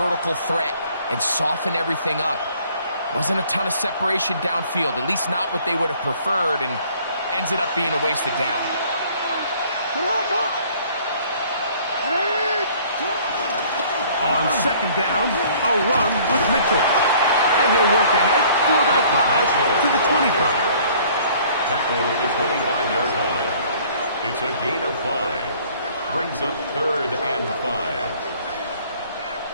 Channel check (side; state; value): both; inverted; correlation -0.56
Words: threat, and soften everything up. Wasn't a ton of separation downfield, at least not what they would have preferred, and ends it up being a wasted down. On 2nd down, a run with Mitchell. And he'll work ahead for about 5 to the 25. Tackled at the 25-yard line. It's a gain of 5. Brings up 3rd and 5.